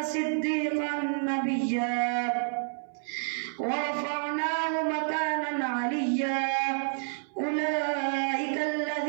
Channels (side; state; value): left; silent; 58 dB below the other